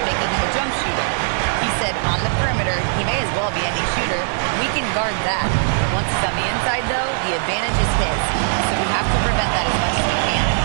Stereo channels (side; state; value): left; silent; digital silence